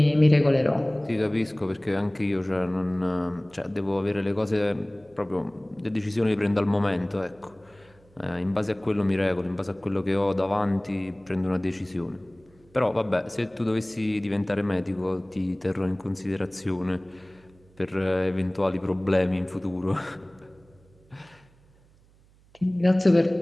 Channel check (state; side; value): noise; right; hum, 29 dB below the sound